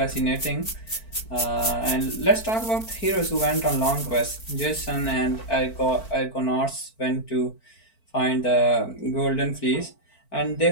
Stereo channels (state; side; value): late; right; 4.5 ms